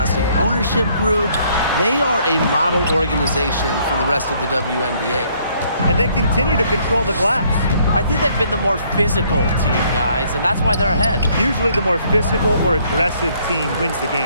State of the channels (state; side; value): inverted; both; correlation -0.65